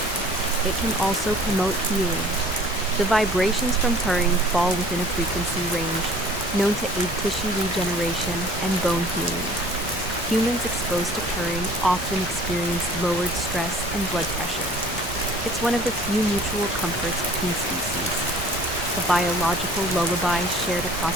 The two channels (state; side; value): normal; both; correlation 0.50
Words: It can also promote healing. The vibrations from purring fall within a frequency range known to aid tissue regeneration and bone healing. Humans exposed to purring often experience lowered stress and blood pressure. It's one of the few mutual comforts between species, a biological lullaby shared across